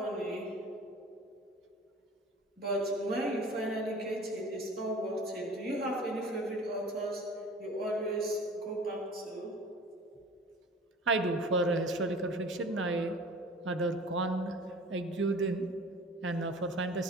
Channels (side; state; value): both; normal; correlation 0.43